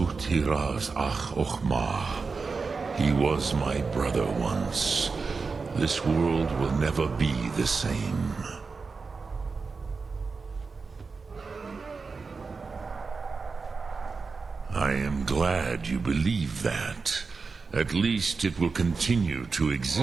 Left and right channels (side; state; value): left; quieter; 4.6 dB